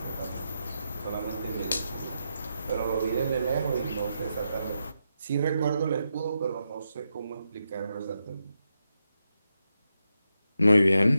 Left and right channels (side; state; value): both; inverted; correlation -0.85